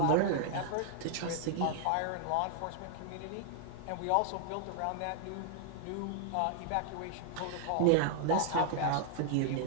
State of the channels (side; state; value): both; different; correlation 0.00